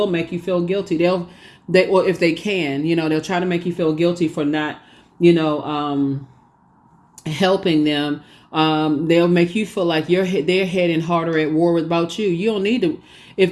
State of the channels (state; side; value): identical; both; correlation 1.00